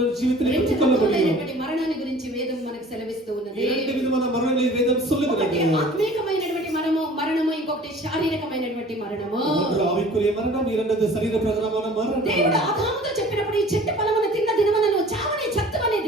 ஜீவிதத்தில் రెండు பெற்றுக்கொள்ள முடியும். రకములైనటువంటి మరణాన్ని గురించి వేదం మనకు సెలవిస్తూ ఉన్నది. இரண்டு விதமான மரணங்களை வேதம் ఒకటి சொல்லுகிறது. ఆత్మీకమైనటువంటి మరణము, ఇంకొకటి శారీరకమైనటువంటి మరణము. ஒன்று ஆவிக்குரிய மரணம், இரண்டாவது சரீர பிரகாரமான மரணம். దేవుడు ఆదాముతో చెప్పినప్పుడు ఈ చెట్టు ఫలమును తిన్న దినమున నువ్వు చావని చత్తవని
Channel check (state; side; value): normal; both; correlation 0.47